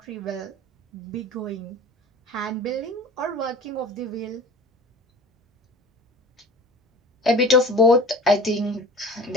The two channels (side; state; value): both; normal; correlation 0.42